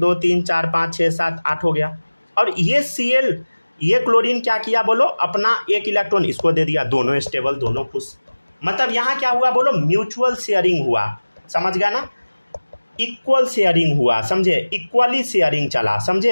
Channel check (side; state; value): both; inverted; correlation -1.00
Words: 3 4 5 6 7 8 हो गया। और ये Cl ये क्लोरीन क्या किया बोलो, अपना एक इलेक्ट्रॉन इसको दे दिया, दोनों स्टेबल, दोनों खुश। मतलब यहाँ क्या हुआ बोलो, म्यूचुअल शेयरिंग हुआ, समझ गया ना, इक्वल शेयरिंग हुआ, समझे, इक्वली शेयरिंग चला,